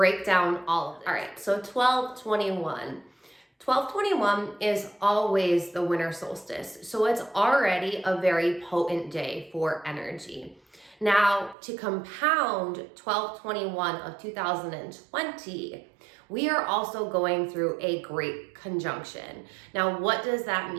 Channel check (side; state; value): left; drops out; at 11.6 s